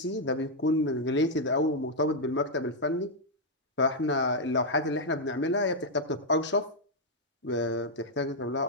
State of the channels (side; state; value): both; normal; correlation -0.03